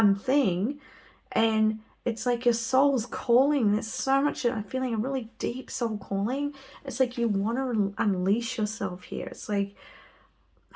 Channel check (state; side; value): identical; both; correlation 1.00